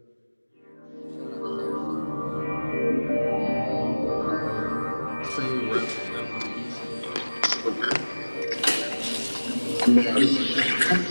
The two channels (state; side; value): inverted; both; correlation -1.00